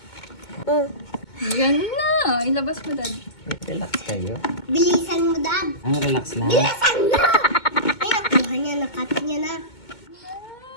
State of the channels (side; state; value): right; late; 2.2 ms